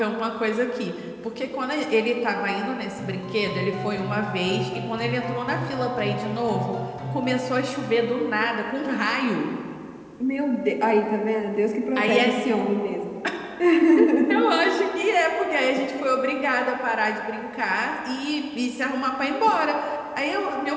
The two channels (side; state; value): both; identical; correlation 1.00